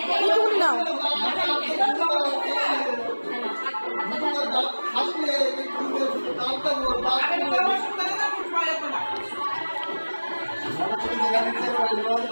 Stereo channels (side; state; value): both; inverted; correlation -1.00